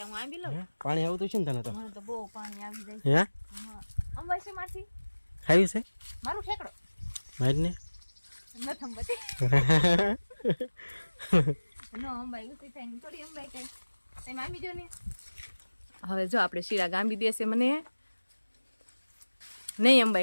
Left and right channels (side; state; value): both; inverted; correlation -1.00